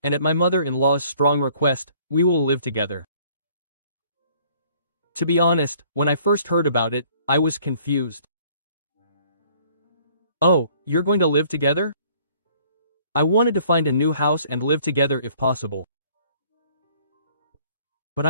and at my mother-in-law's strong request, we will live together. To be honest, when I first heard about it, I was confused. Oh, you're going to live together? I wanted to find a new house and live together if possible. But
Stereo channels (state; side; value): inverted; both; correlation -0.58